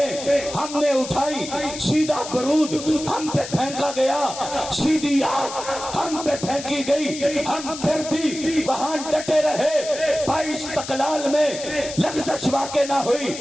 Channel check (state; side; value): noise; left; hiss, 10 dB below the sound